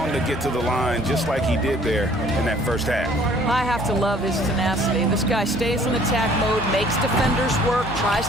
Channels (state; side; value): normal; both; correlation 0.56